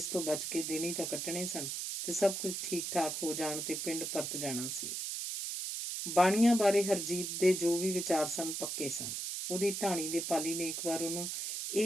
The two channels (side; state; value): right; noise; hiss, 3 dB below the sound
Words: ਤੋਂ ਬਚ ਕੇ ਦਿਨ ਹੀ ਤਾਂ ਕੱਟਣੇ ਸਨ ਤੇ ਸਭ ਕੁਝ ਠੀਕ ਠਾਕ ਹੋ ਜਾਣ ਤੇ ਪਿੰਡ ਪਰਤ ਜਾਣਾ ਸੀ। ਬਾਣੀਆਂ ਬਾਰੇ ਹਰਜੀਤ ਦੇ ਜੋ ਵੀ ਵਿਚਾਰ ਸਨ ਪੱਕੇ ਸਨ। ਉਹਦੀ ਢਾਣੀ ਦੇ ਪਾਲੀ ਨੇ ਇੱਕ ਵਾਰ ਉਹਨੂੰ